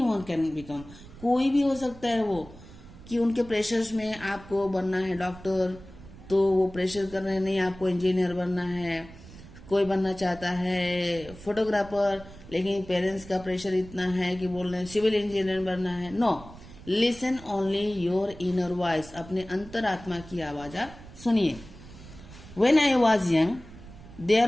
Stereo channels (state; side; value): noise; right; rumble, 18 dB below the sound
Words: can become, कोई भी हो सकता है वो, कि उनके प्रेशर्स में आपको बनना है डॉक्टर, तो वो प्रेशर कर रहे हैं, नहीं आपको इंजीनियर बनना है। कोई बनना चाहता है फोटोग्राफर, लेकिन पेरेंट्स का प्रेशर इतना है कि बोल रहे हैं सिविल इंजीनियर बनना है। No, listen only your inner voice, अपने अंतरात्मा की आवाज आप सुनिए। When I was young